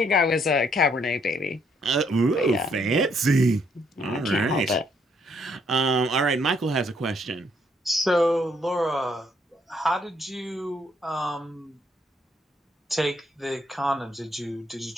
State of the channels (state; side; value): normal; both; correlation 0.70